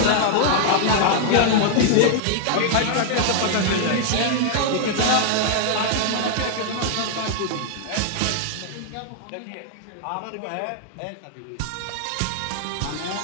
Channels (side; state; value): both; different; correlation 0.00